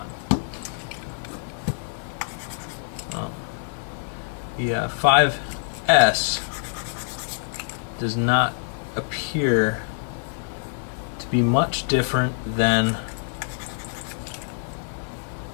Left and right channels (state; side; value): silent; right; digital silence